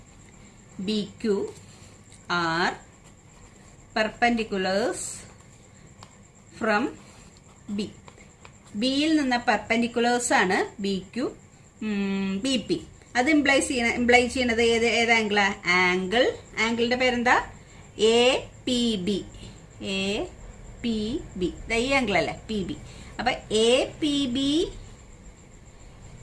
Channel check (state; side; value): identical; both; correlation 1.00